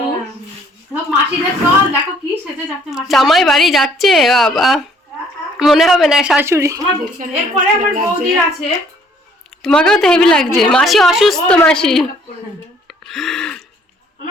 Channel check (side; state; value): both; normal; correlation 0.61